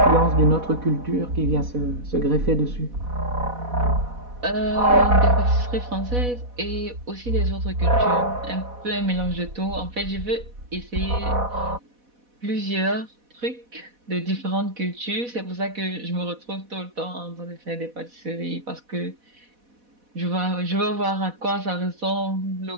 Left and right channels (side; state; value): left; late; 4.1 ms